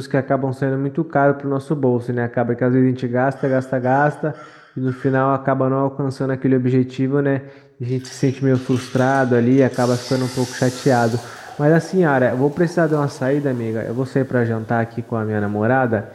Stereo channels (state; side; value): identical; both; correlation 1.00